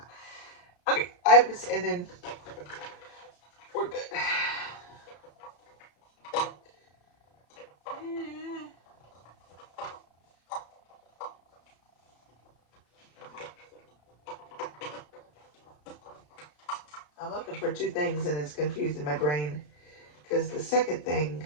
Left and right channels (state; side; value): late; right; 33 ms